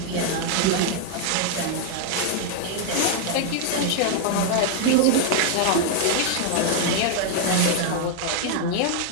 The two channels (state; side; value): different; both; correlation 0.00